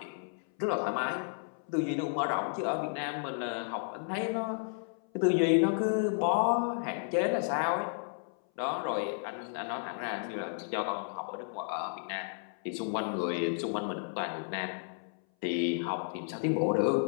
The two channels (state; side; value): silent; right; 56 dB below the other